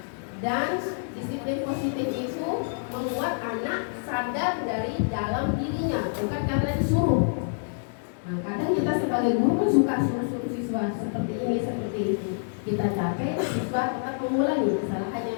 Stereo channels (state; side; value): silent; right; 60 dB below the other